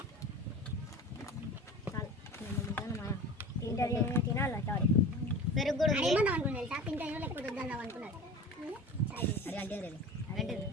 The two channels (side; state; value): both; normal; correlation 0.35